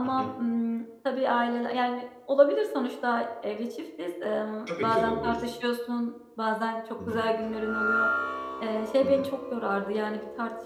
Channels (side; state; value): both; identical; correlation 1.00